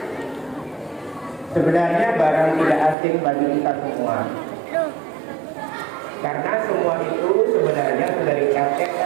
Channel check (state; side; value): drops out; left; at 3.0 s